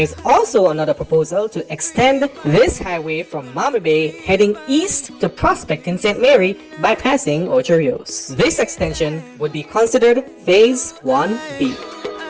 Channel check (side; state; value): both; identical; correlation 1.00